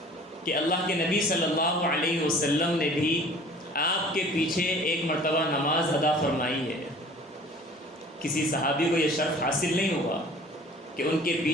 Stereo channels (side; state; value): both; normal; correlation 0.48